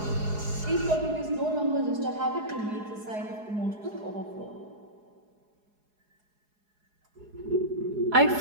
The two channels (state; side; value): late; left; 4.8 ms